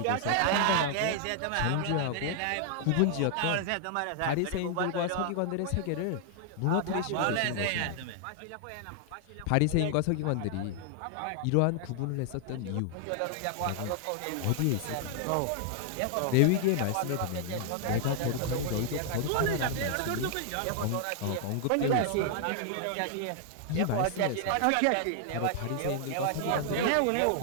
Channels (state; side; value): different; both; correlation 0.00